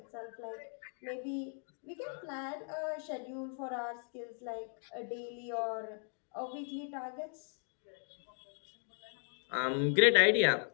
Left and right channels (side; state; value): right; silent; 53 dB below the other